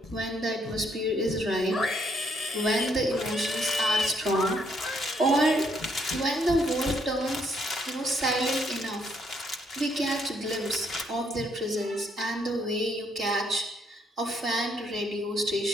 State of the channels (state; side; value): normal; both; correlation 0.72